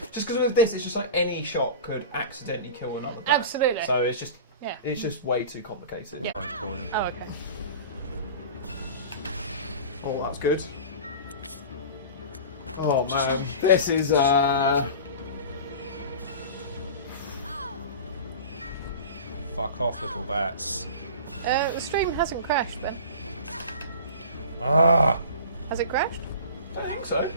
Just because with this, it's just like any shot could accidentally kill another bat. Absolutely. So it's just way too complicated. Yeah. Oh, okay. Oh, that's good. Oh man, this is Fuck off, little bats. The stream hasn't crashed, Ben. Ah! Has it crashed? I think so.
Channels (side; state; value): both; inverted; correlation -0.35